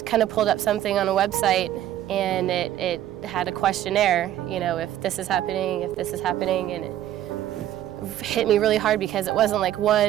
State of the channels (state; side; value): quieter; left; 12.4 dB